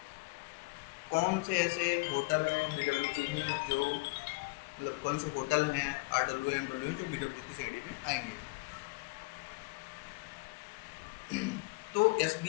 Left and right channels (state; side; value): quieter; right; 27.5 dB